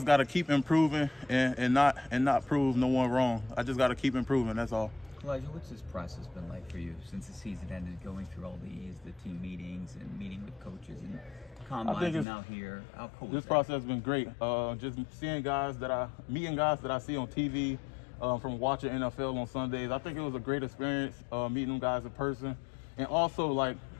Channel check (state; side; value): drops out; right; at 12.2 s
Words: got to keep improving and not prove no one wrong. I just got to keep improving. That's all. Calijah, what's this process been like for you since the season ended, going through all the team meetings and meeting with coaches and combines and now here? How cool This is that? process has been great. Just meeting guys that I see on TV, from watching NFL on Sundays. I think it was a great experience meeting them guys in person. And also, like,